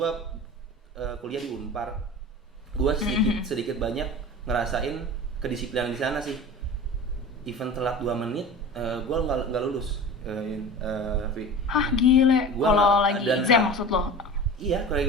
kuliah di Unpar. Gue sedikit banyak ngerasain kedisiplinan di sana sih. Even telat 2 menit, gue nggak lulus. Hah gile. Kalau lagi exam maksud lo? Iya, kalau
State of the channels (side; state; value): both; normal; correlation 0.35